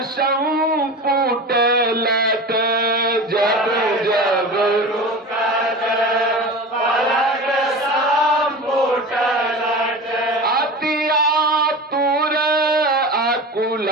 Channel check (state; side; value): normal; both; correlation 0.31